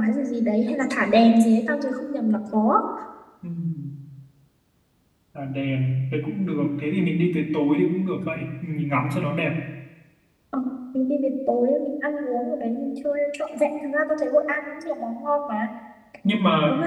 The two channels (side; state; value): both; identical; correlation 1.00